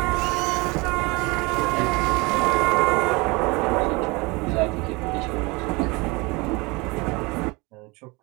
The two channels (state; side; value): quieter; left; 25.6 dB